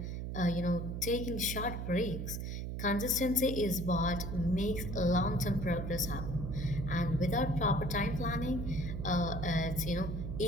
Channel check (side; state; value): right; noise; hum, 4 dB below the sound